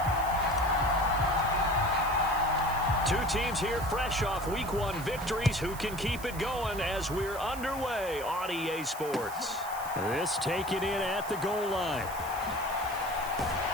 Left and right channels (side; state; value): right; noise; hiss, 14 dB below the sound